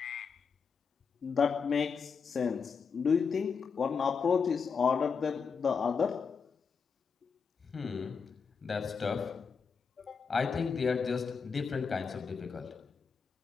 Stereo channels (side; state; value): right; quieter; 5.7 dB